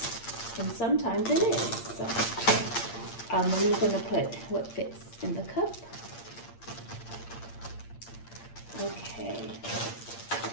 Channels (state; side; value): late; right; 8.7 ms